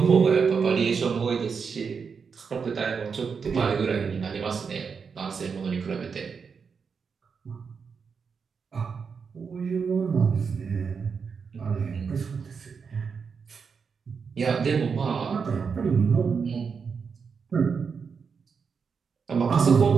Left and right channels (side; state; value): left; quieter; 5.8 dB